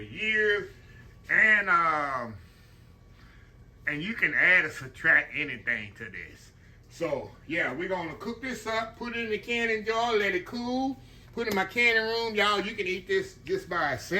years. And you can add or subtract anything to this. So, yeah, we're going to cook this up, put it in the canning jar, let it cool, put it in my canning room. Y'all, you can eat this just by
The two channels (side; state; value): both; identical; correlation 1.00